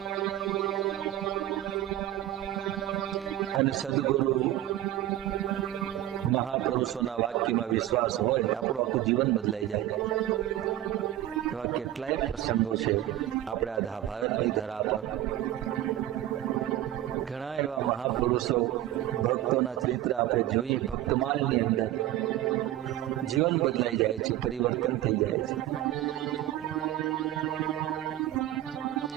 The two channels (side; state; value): left; quieter; 14.0 dB